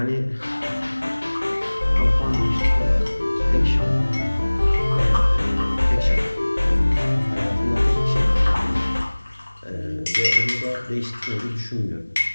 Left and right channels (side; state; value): both; inverted; correlation -1.00